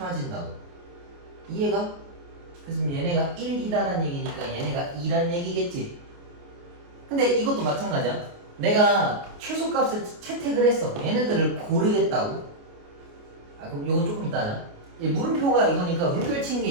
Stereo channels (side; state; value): left; late; 29 ms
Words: 이해가? 그래서 얘네가 1이다라는 얘기니까 얘네가 2란 얘기겠지. 근데 이것도 마찬가지야. 내가 최소값을 채택을 했어. 얘네들을 고르겠다고. 아, 그럼 이건 조금 이따 하자. 물음표가 이거니까 물결친 게